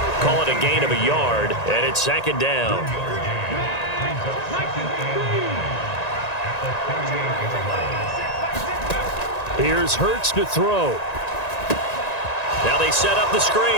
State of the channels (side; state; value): right; late; 1.9 ms